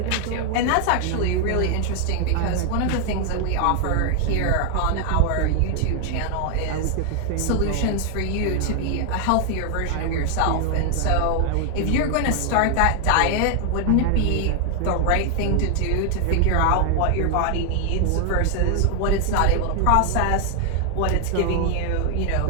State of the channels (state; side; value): different; both; correlation 0.00